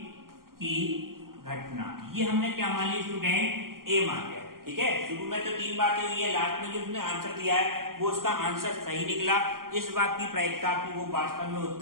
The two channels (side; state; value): left; late; 0.92 ms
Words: की घटना, ये हमने क्या मान ली स्टूडेंट ए मान लिया, ठीक है। शुरू में तो 3 बातें हुई है, लास्ट में जो उसने आंसर दिया है वो उसका आंसर सही निकला। इस बात की प्रायिकता की वो वास्तव में